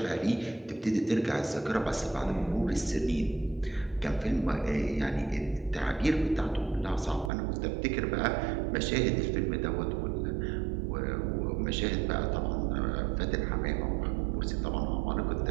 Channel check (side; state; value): left; drops out; at 7.3 s